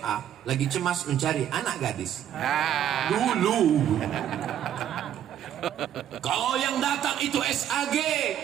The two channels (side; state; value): left; quieter; 10.5 dB